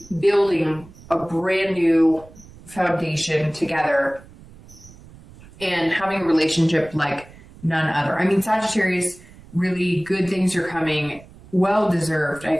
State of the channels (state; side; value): noise; right; rumble, 21 dB below the sound